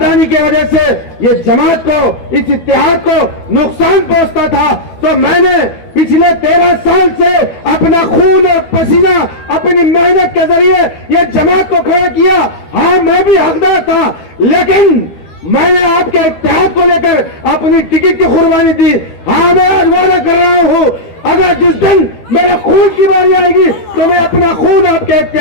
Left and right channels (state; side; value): late; right; 12 ms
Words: की वजह से ये जमात को, इस इत्तेहाद को नुकसान पहुंचता था। तो मैंने पिछले 13 साल से अपना खून और पसीना, अपनी मेहनत के जरिए ये जमात को खड़ा किया। हाँ, मैं भी हकदार था, लेकिन मैंने आपके इत्तेहाद को लेकर अपनी टिकट की कुर्बानी दी। हाँ, मैं आज वादा कर रहा हूं, अगर जिस दिन मेरा खून की बारी आएगी तो मैं अपना खून आपके